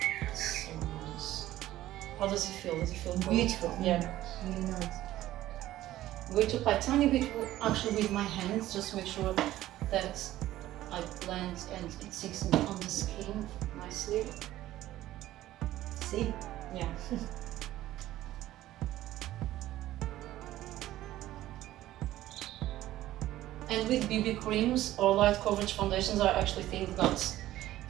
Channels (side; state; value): left; quieter; 14.6 dB